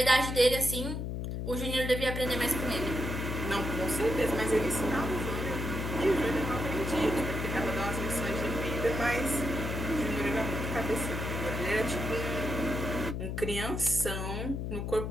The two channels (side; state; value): left; noise; hum, 3 dB below the sound